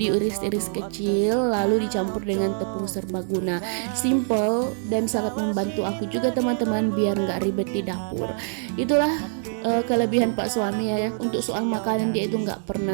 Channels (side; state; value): left; silent; 58 dB below the other